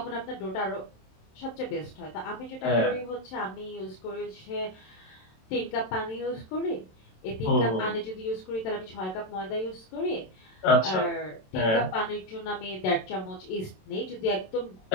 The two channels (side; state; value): right; late; 27 ms